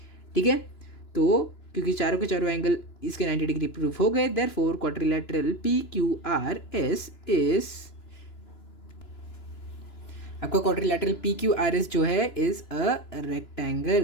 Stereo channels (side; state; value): right; late; 2.9 ms